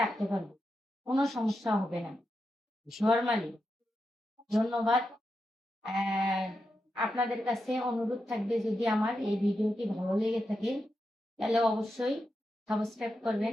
রাখতে পারবো, কোনো সমস্যা হবে না নরমালি। ধন্যবাদ। আহ, আপনাদের কাছে অনুরোধ থাকবে, যদি আমার এই ভিডিওটি ভালো লেগে থাকে তাহলে অবশ্যই সাবস্ক্রাইব করবেন,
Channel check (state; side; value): normal; both; correlation 0.87